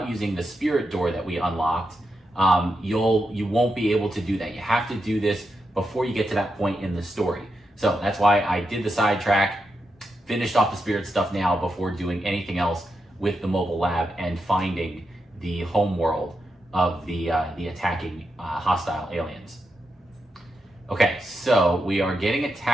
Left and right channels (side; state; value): both; normal; correlation 0.86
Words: using the spirit door that we unlocked, you won't be able to do that. You have to do this before you get to that point in the story. So that's why I did the sidetrack, finished off the spirit stuff now before doing anything else with the mobile lab and finding the home world of the attacking hostile aliens. Okay, so we are getting